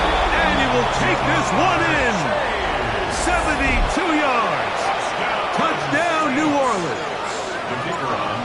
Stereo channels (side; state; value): both; identical; correlation 1.00